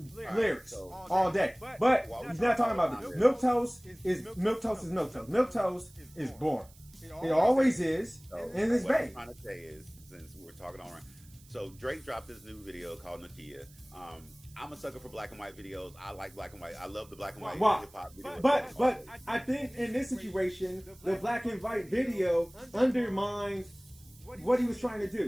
lyrics all day. But he's not talking about this. Milquetoast is milquetoast. Milquetoast is boring. It always is, and it's what big. I'm trying to say is, since we're talking all around, so Drake dropped this new video called Nokia. I'm a sucker for black and white videos. I like black and white. I love the black and white hip hop videos. But I think in this situation, the black and white video undermines what he was trying to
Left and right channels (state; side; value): noise; right; hiss, 25 dB below the sound